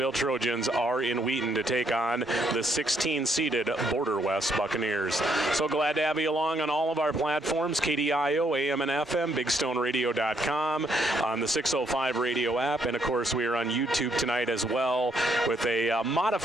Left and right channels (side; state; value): both; normal; correlation 0.72